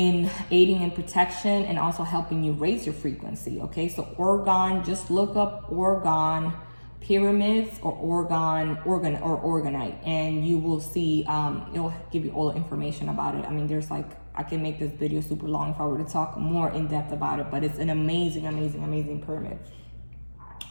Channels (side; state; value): both; inverted; correlation -1.00